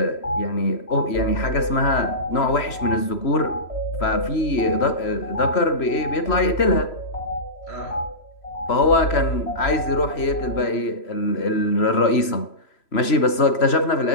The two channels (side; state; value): right; late; 3.0 ms